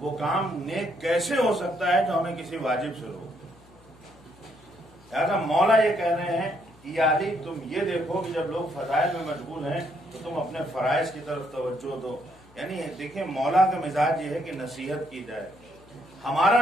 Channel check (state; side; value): noise; left; hum, 27 dB below the sound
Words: کام نیک کیسے ہو سکتا ہے جو ہمیں کسی واجب سے روکے. لہٰذا مولا یہ کہہ رہے ہیں کہ یا علی تم یہ دیکھو کہ جب لوگ فضائل میں مشغول ہیں تو تم اپنے فرائض کی طرف توجہ دو. یعنی دیکھیں مولا کا مزاج یہ ہے کہ نصیحت کی جائے،